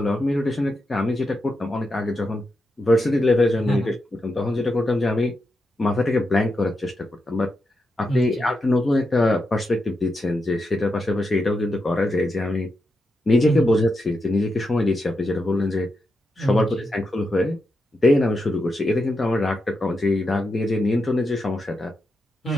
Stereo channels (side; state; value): both; normal; correlation 0.86